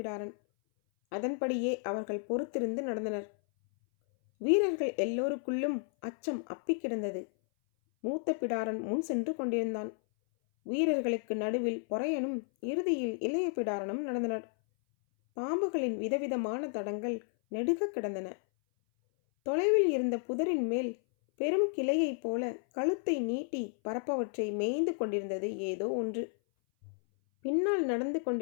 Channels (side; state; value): right; silent; 56 dB below the other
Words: அதன்படியே அவர்கள் பொறுத்திருந்து நடந்தனர். வீரர்கள் எல்லோருக்குள்ளும் அச்சம் அப்பி கிடந்தது. மூத்த பிடாரன் முன் சென்று கொண்டிருந்தான். வீரர்களுக்கு நடுவில் பொறையனும் இறுதியில் இளைய பிடாரனும் நடந்தனர். பாம்புகளின் விதவிதமான தடங்கள் நெடுக கிடந்தன. தொலைவில் இருந்த புதரின் மேல் பெரும் கிளையைப் போல கழுத்தை நீட்டி பரப்பவற்றை மேய்ந்து கொண்டிருந்தது ஏதோ ஒன்று. பின்னால் நடந்து